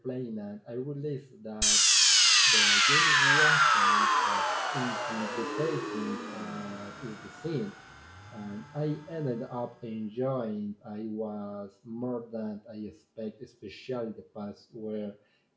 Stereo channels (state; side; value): identical; both; correlation 1.00